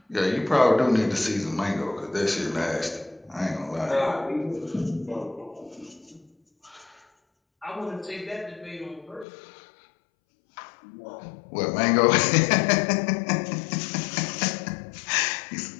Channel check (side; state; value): right; drops out; at 9.2 s